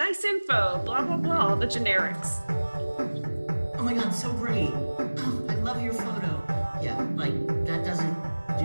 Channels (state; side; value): inverted; both; correlation -1.00